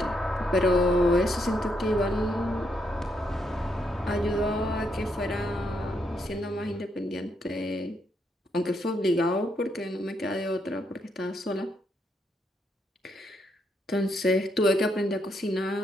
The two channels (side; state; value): both; normal; correlation 0.77